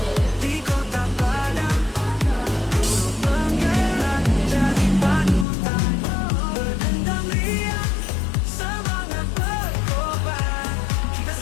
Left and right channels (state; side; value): drops out; right; at 5.5 s